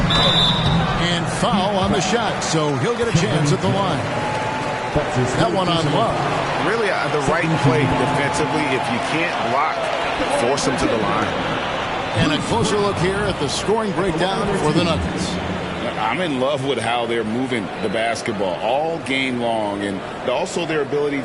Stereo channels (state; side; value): identical; both; correlation 1.00